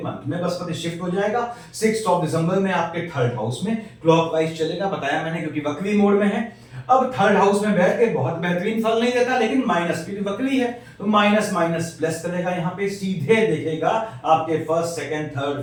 में। बृहस्पति शिफ्ट हो जाएगा 6 दिसंबर में आपके 3rd हाउस में, क्लॉकवाइज चलेगा, बताया मैंने, क्योंकि वक्री मोड में है। अब 3rd हाउस में बैठ के बहुत बेहतरीन फल नहीं देता, लेकिन माइनस की वक्री है तो माइनस माइनस प्लस करेगा। यहाँ पे सीधे देखेगा आपके 1st, 2nd,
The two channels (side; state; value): both; identical; correlation 1.00